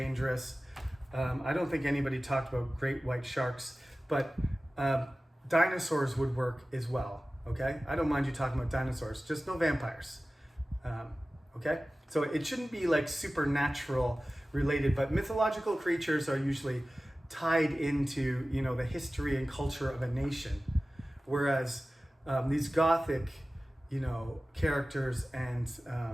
I don't think anybody talked about great white sharks, but dinosaurs would work as well. Okay, I don't mind you talking about dinosaurs, just no vampires. Okay, so it shouldn't be like supernatural related, but mythological creatures are usually tied into, you know, the history and culture of a nation, whereas these gothic, you know, characters and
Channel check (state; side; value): normal; both; correlation 0.96